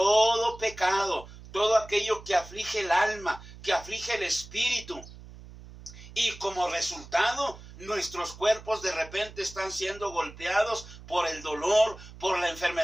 pecado, todo aquello que aflige el alma, que aflige el espíritu. Y como resultado, nuestros cuerpos de repente están siendo golpeados por el dolor, por la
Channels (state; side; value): noise; right; hum, 17 dB below the sound